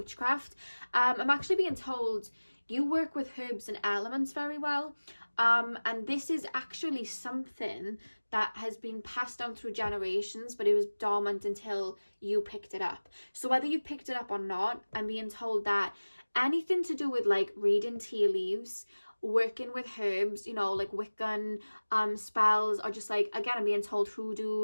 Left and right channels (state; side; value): inverted; both; correlation -1.00